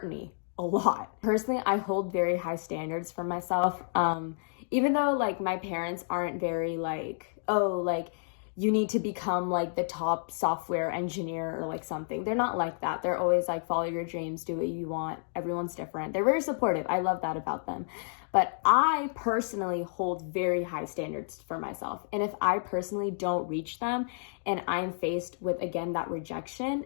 me a lot. Personally, I hold very high standards for myself, even though my parents aren't very you need to become the top software engineer or something. They're not like that. They're always follow your dreams, do what you want. Everyone's different. They're very supportive. I love that about them. But I personally hold very high standards for myself. And if I personally don't reach them and I'm faced with, again, that rejection,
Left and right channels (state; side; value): silent; right; digital silence